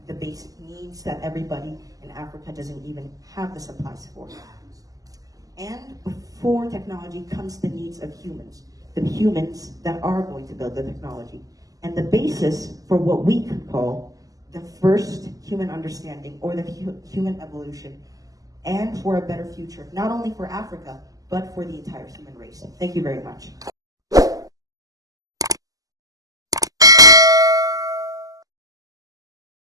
the basic needs that everybody in Africa doesn't even have the supplies for. And before technology comes the needs of humans, the humans that are going to build the technology. And the basis for what we could call the first human understanding or the human evolution, and for a better future, not only for Africa, but for the entire human race. Thank you very much.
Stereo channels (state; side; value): late; left; 0.17 ms